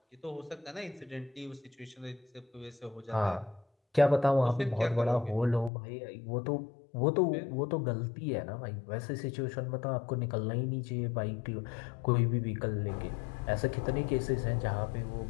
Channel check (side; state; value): right; drops out; at 5.7 s